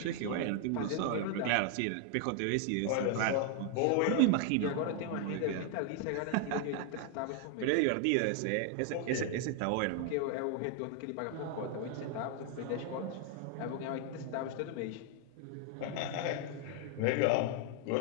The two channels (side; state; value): both; different; correlation 0.00